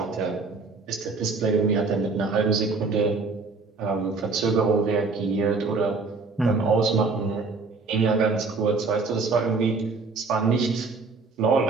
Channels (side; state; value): left; quieter; 4.1 dB